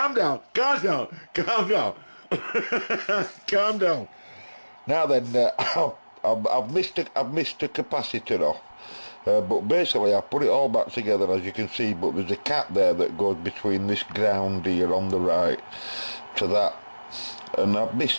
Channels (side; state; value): both; inverted; correlation -1.00